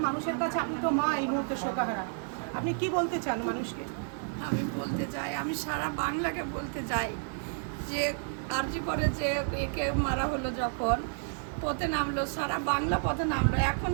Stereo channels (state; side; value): silent; left; 56 dB below the other